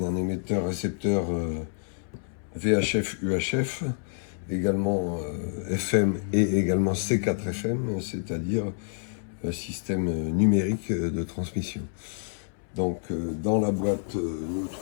émetteur-récepteur VHF-UHF, également FM et également C4FM, c'est-à-dire système numérique de transmission. Donc, dans la boîte, nous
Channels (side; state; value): right; silent; 59 dB below the other